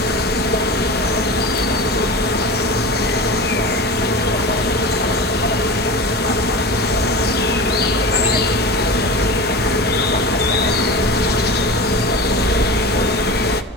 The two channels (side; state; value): both; normal; correlation 0.30